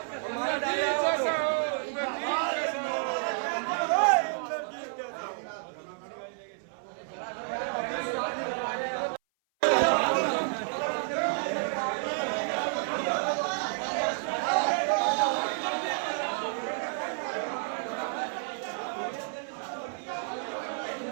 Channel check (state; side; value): silent; left; 56 dB below the other